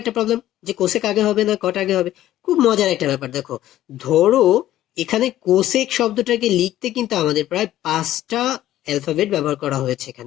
একটা প্রবলেম যে কোসেক আগে হবে না কট আগে হবে। খুব মজার একটা ব্যাপার, দেখো ধরো এখানে কোসেক শব্দটাকে লিখতে কিন্তু আমাদের প্রায় 5টা অ্যালফাবেট ব্যবহার করা হয়েছে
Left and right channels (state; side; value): quieter; right; 13.6 dB